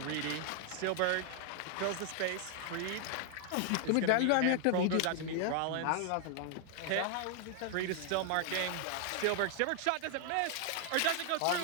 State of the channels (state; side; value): different; both; correlation 0.00